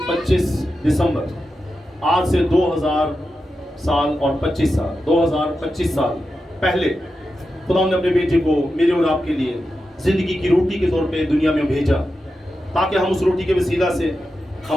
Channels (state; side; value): normal; both; correlation 0.90